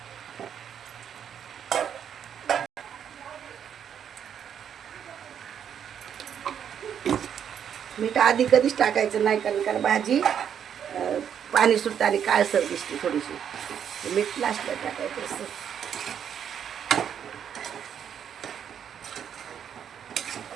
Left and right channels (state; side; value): quieter; left; 8.6 dB